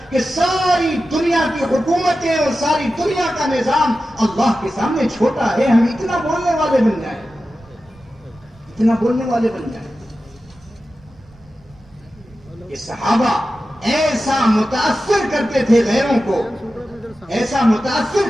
کہ ساری دنیا کی حکومتیں اور ساری دنیا کا نظام اللہ کے سامنے چھوٹا ہے. ہم اتنا بولنے والے بن جائیں, اتنا بولنے والے بن جائیں. یہ صحابہ ایسا متاثر کرتے تھے غیروں کو, ایسا متاثر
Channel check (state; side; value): noise; right; rumble, 27 dB below the sound